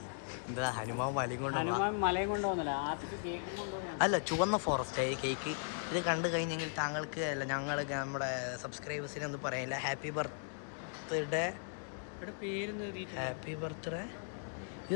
എന്താ? ഹനുമാൻ മലയും കൊണ്ടുപോകുന്നില്ല. അല്ല, ചുവന്ന ഫോറസ്റ്റ് കേക്ക്. ഇത് കണ്ടു കഴിഞ്ഞെങ്കിൽ താങ്കൾക്ക് അല്ല ഞങ്ങൾ നമ്മുടെ സബ്സ്ക്രൈബേഴ്സിനെ ഒന്നും പറയാനില്ല. Happy birthday. Happy birthday.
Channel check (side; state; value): right; silent; digital silence